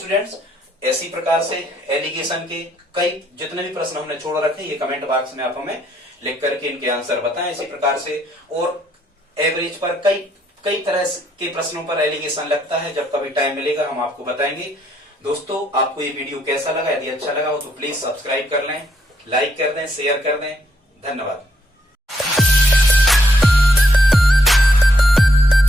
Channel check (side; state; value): both; normal; correlation 0.72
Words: ऐसी प्रकार से एलिगेशन के कई जितने भी प्रश्न हमने छोड़ रखे, ये कमेंट बॉक्स में आप हमें लिख करके इनके आंसर बताएं। इसी प्रकार से और एवरेज पर कई तरह के प्रश्नों पर एलिगेशन लगता है, जब कभी टाइम मिलेगा हम आपको बताएंगे। दोस्तों, आपको ये वीडियो कैसा लगा? यदि अच्छा लगा हो तो प्लीज सब्सक्राइब कर लें, लाइक कर दें, शेयर कर दें। धन्यवाद।